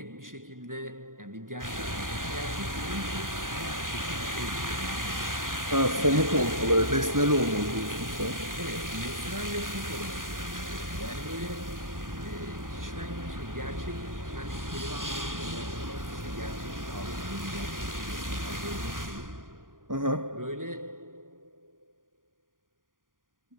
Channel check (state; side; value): late; left; 0.90 ms